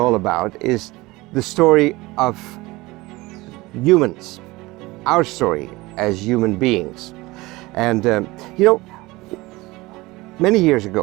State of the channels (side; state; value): left; quieter; 21.0 dB